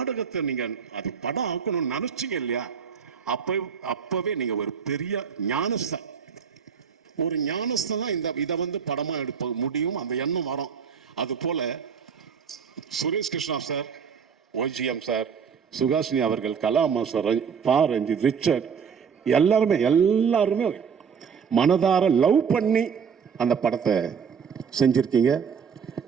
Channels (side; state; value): left; quieter; 6.7 dB